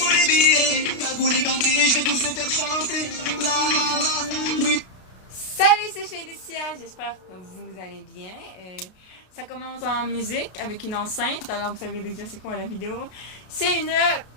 les billets. T'as goût les gantés, je vais tous les faire chanter. La la la, oui. Salut, c'est Félicia, j'espère que vous allez bien. Ça commence en musique avec une enceinte, alors vous savez déjà c'est quoi la vidéo. C'est une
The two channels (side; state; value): right; late; 33 ms